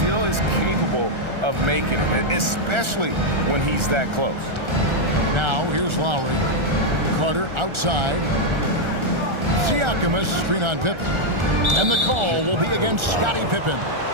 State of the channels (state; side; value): late; left; 1.4 ms